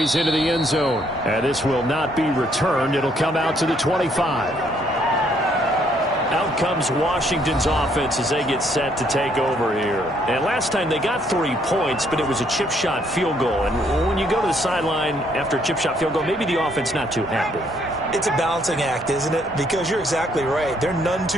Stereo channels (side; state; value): both; normal; correlation 0.68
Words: into the end zone. And this will not be returned. It'll come out to the 25. Out comes Washington's offense as they get set to take over here. And last time they got 3 points, but it was a chip shot field goal. And when you go to the sideline after a chip shot field goal, maybe the offense not too happy. It's a balancing act, isn't it? Because you're exactly right. They're none